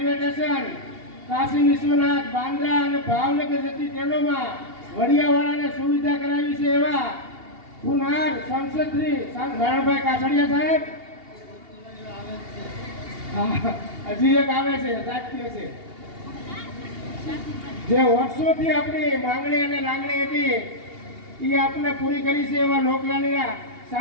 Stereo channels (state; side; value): late; left; 2.8 ms